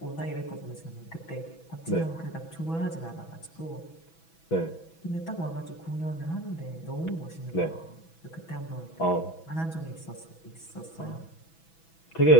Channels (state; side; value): late; right; 6.1 ms